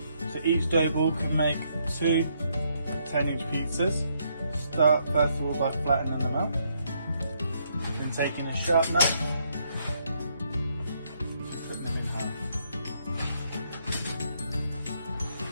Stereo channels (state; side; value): inverted; both; correlation -0.73